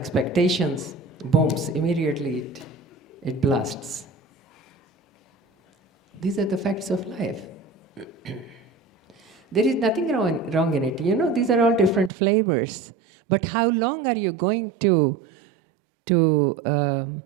booms, immediately it blasts. These are the facts of life. There is nothing wrong in it. You know, these are all different flavors. But how long are you going to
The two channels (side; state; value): left; drops out; at 12.1 s